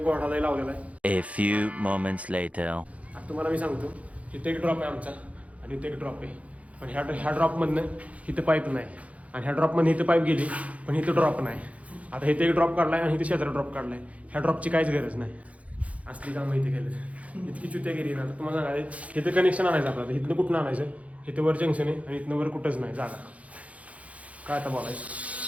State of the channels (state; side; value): late; left; 0.066 ms